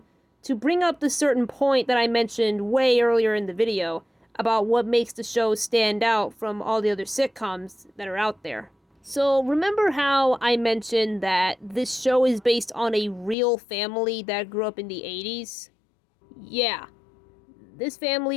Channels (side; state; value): right; drops out; at 13.4 s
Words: to bring up the certain point that I mentioned way earlier in the video about what makes the show stand out from all the other sitcoms that are out there. So remember how I mentioned that this show is based on a real family that grew up in the 80s? Yeah, this